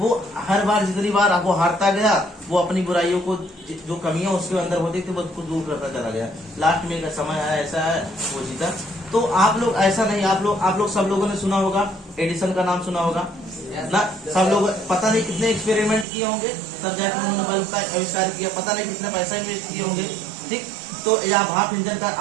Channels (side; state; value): left; drops out; at 16.1 s